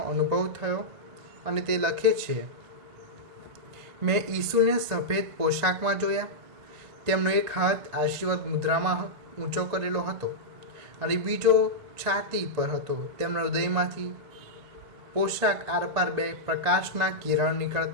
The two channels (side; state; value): left; late; 1.9 ms